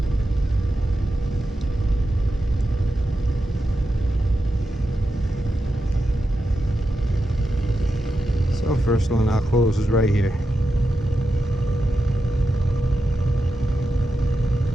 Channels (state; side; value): normal; both; correlation 0.89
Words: First one I'll close is right here.